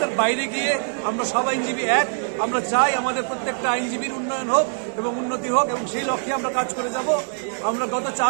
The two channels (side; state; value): left; silent; 57 dB below the other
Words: বাইরে গিয়ে আমরা সব আইনজীবী এক। আমরা চাই আমাদের প্রত্যেকটা আইনজীবীর উন্নয়ন হোক এবং উন্নতি হোক, এবং সেই লক্ষ্যে আমরা কাজ করে যাব। আমরা গত